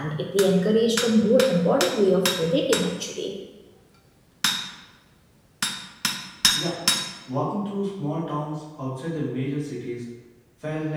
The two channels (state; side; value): identical; both; correlation 1.00